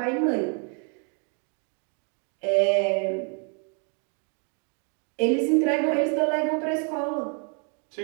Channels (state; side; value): quieter; left; 39.1 dB